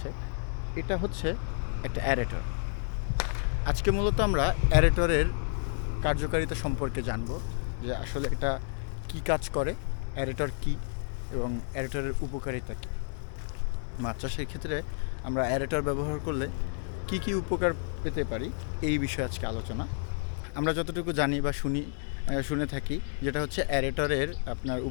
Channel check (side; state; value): right; silent; 58 dB below the other